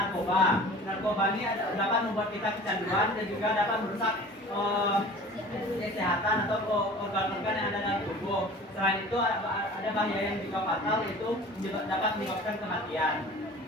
Narkoba ini dapat membuat kita kecanduan dan juga dapat merusak kesehatan atau organ-organ yang ada dalam tubuh. Selain itu ada bahaya yang juga fatal, yaitu dapat menyebabkan kematian.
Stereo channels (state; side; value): normal; both; correlation 0.42